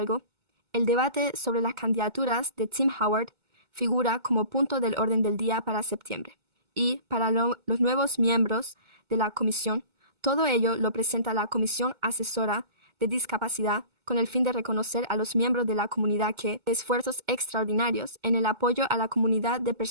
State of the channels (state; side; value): late; left; 2.2 ms